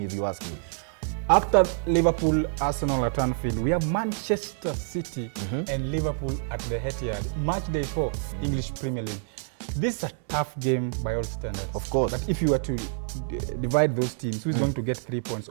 if you ask me. After Liverpool, Arsenal at Anfield, we have Manchester City and Liverpool at the Etihad. Match day 4, English Premier League. This is a tough game by all standards. Of course. But if you were to divide those teams, who is going to get 3 points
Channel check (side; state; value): left; silent; 60 dB below the other